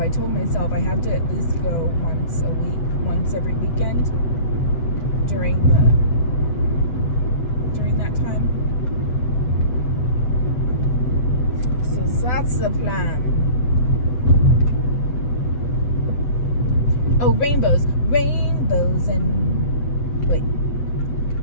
told myself I have to at least go once a week, once every weekend during that time. So that's the plan. Oh, rainbows and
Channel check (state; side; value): late; right; 8.0 ms